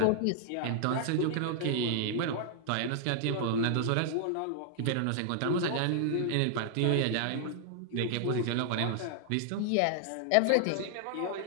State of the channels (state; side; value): different; both; correlation -0.01